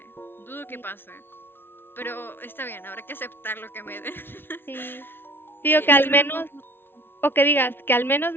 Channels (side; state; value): right; late; 0.11 ms